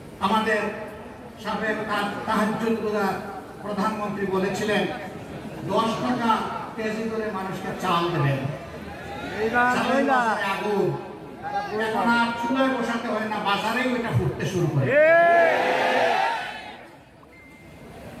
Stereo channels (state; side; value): identical; both; correlation 1.00